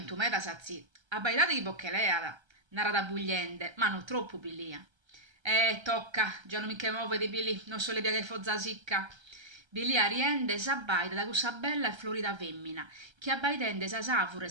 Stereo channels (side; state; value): left; late; 1.3 ms